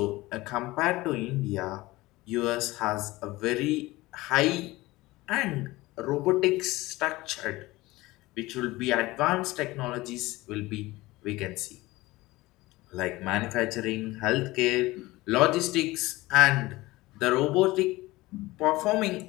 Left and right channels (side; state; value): right; quieter; 19.8 dB